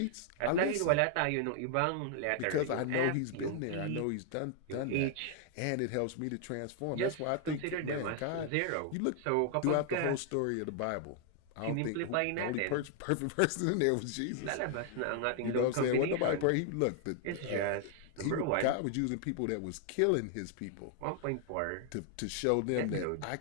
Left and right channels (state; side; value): different; both; correlation 0.00